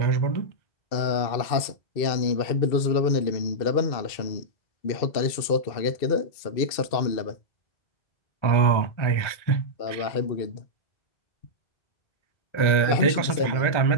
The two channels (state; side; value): late; right; 2.6 ms